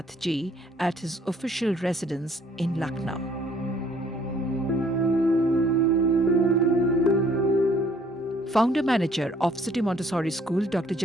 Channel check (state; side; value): normal; both; correlation 0.61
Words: ji, at his official residence in Lucknow. Founder-manager of City Montessori School, Dr.